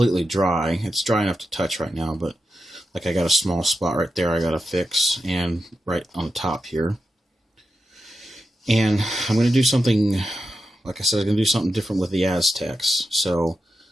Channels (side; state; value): both; normal; correlation 0.88